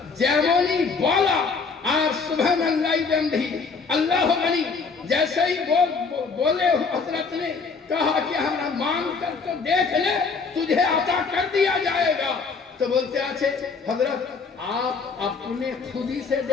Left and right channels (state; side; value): quieter; right; 4.8 dB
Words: যেমনই বলা আর সুবহানাল্লাহ বিহামদিহি अल्लाह अली जैसे ही बोले हजरत ने कहा कि हमारा मांग कर तो देख ले, तुझे अता कर दिया जाएगा। तो बोलते अच्छे हजरत आप अपने खुद ही से